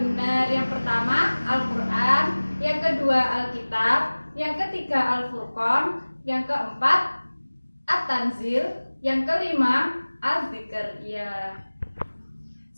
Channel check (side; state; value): both; inverted; correlation -1.00